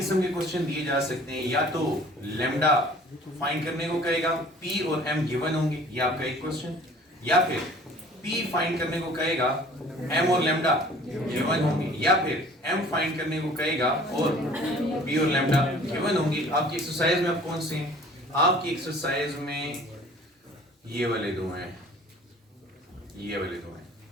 के क्वेश्चन दिए जा सकते हैं। या तो लैम्डा फाइंड करने को कहेगा, p और m गिवन होंगे, ये आपका एक क्वेश्चन, या फिर p फाइंड करने को कहेगा, m और लैम्डा गिवन होंगे, या फिर m फाइंड करने को कहेगा और p और लैम्डा गिवन होंगे। आपकी एक्सरसाइज में आप कौन से हैं, आपकी एक्सरसाइज में ये वाले दो हैं, ये वाले दो हैं,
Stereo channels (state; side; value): normal; both; correlation 0.50